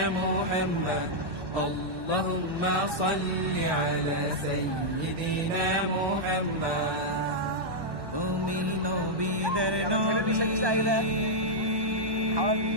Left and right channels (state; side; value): late; left; 1.2 ms